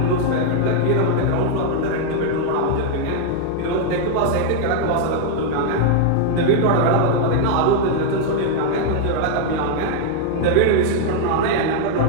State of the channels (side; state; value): both; different; correlation 0.00